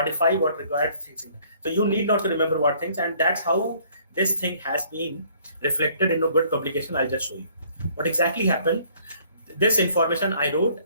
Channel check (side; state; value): both; inverted; correlation -0.59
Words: what required things. So you need not to remember what things, and that's how this thing has been reflected in a good publication. I'll just show you what exactly happened. This information I wrote